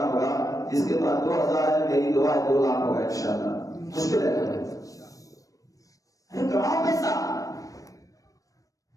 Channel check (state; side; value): late; right; 0.16 ms